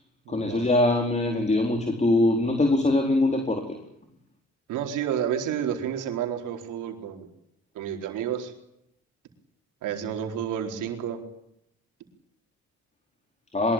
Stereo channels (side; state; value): both; normal; correlation 0.48